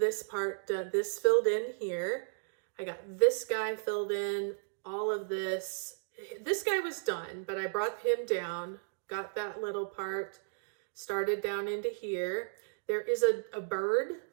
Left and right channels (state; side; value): silent; left; digital silence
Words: part, this filled in here. I got this guy filled in, all of this. This guy was done, but I brought him down, got that little part, started down into here. There is a bird